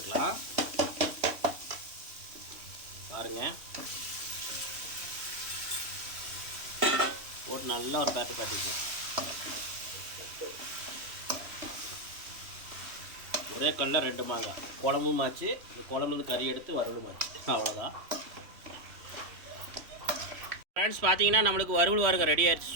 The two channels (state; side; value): late; left; 3.2 ms